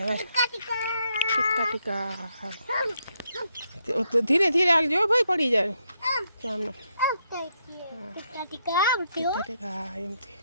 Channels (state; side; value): inverted; both; correlation -0.77